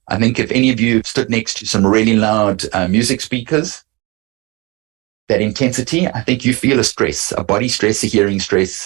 I think if any of you have stood next to some really loud music speakers, that intensity, I think you feel a stress, a body stress, a hearing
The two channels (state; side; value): quieter; left; 25.6 dB